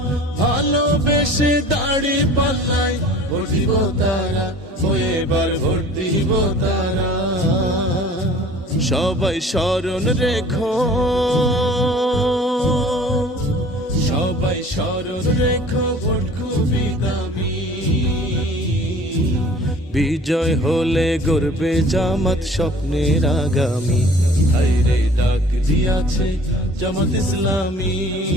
ভালোবেসে দাড়ি পাল্লাই ভোট দিব তারা, ও এবার ভোট দিব তারা। সবাই স্মরণ রেখো, সবাই স্মরণ রেখো, ভোট খুবই দামি। বিজয় হলে গড়বে জামাত স্বপ্নের আগামী। হায়রে ডাক দিয়াছে জামাত ইসলামী,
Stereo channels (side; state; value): both; normal; correlation 0.47